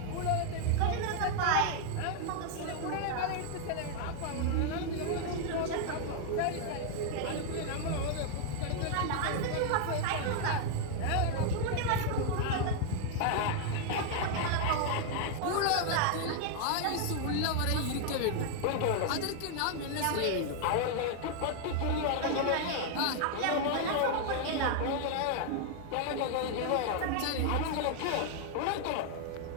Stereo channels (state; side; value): different; both; correlation 0.00